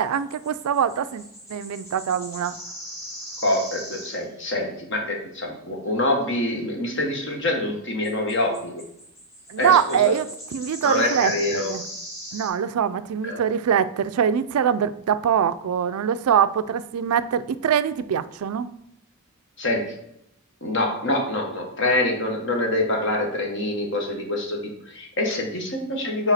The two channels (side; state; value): left; quieter; 3.1 dB